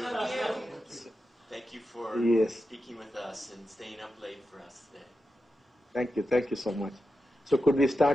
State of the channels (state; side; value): normal; both; correlation 0.90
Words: Thank you for Yes. speaking with us and staying up late for us today. Thank you. Thank you so much. So could we